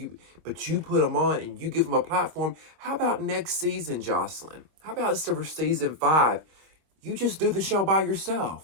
but you put them on and you give them a platform, how about next season, Joselyn? How about for season 5? You just do the show by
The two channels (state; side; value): late; left; 25 ms